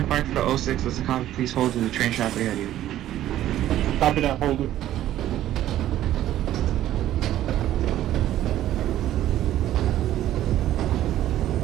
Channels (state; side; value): quieter; left; 12.9 dB